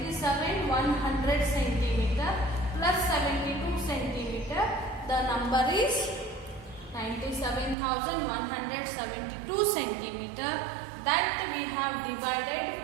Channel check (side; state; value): left; drops out; at 7.8 s